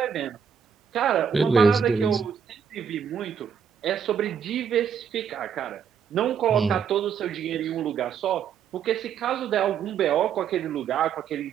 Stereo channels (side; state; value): left; quieter; 7.5 dB